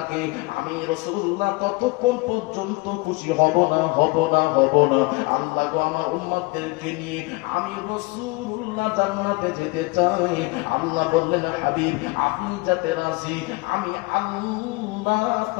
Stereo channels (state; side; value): quieter; right; 24.5 dB